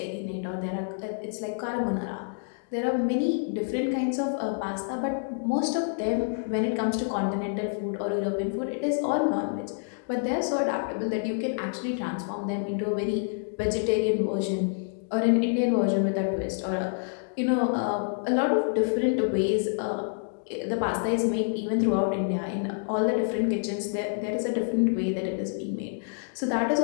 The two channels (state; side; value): silent; right; digital silence